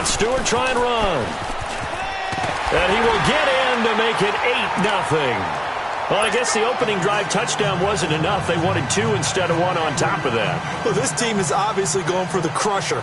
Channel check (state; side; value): identical; both; correlation 1.00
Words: Stewart try and run. And he will get in to make it 8-0. Well, I guess the opening drive touchdown wasn't enough. They wanted 2 instead of 1 on top of that. Well, this team is obviously going for the crusher.